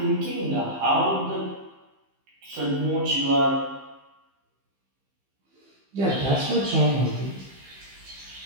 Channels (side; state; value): left; late; 15 ms